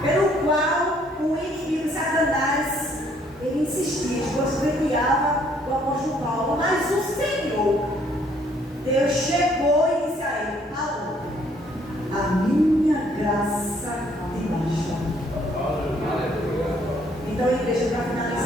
pelo qual o inimigo Satanás, ele insistia, esbofeteava o apóstolo Paulo, mas o Senhor, Deus chegou e disse a ele: Paulo, a minha graça te basta. Então, igreja, para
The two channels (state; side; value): normal; both; correlation 0.65